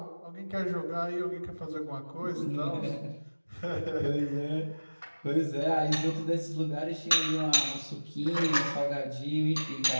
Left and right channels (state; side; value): inverted; both; correlation -1.00